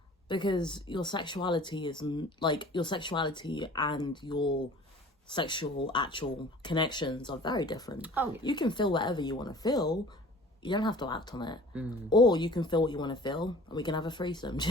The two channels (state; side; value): normal; both; correlation 0.46